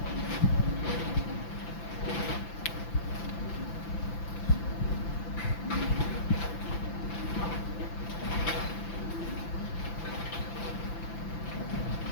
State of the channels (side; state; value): right; late; 5.9 ms